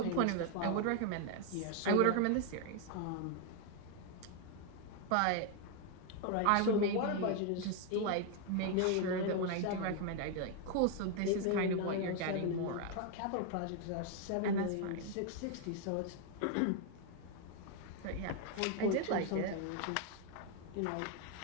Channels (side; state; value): both; different; correlation 0.01